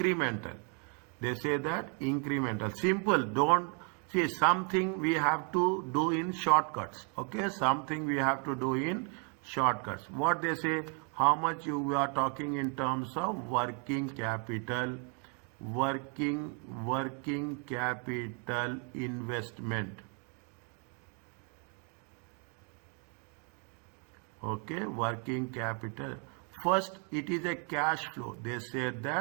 They say that incremental. Simple. Don't see something we have to do in shortcuts. Okay, something we have to do in shortcuts. What they say? How much we are talking in terms of working capital. Working capital investment. Okay, working capital. First, it is a cash flow. They said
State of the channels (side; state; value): left; quieter; 39.0 dB